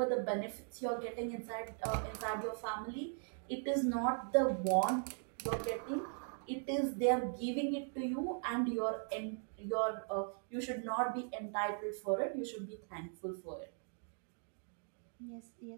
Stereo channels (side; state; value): left; silent; 51 dB below the other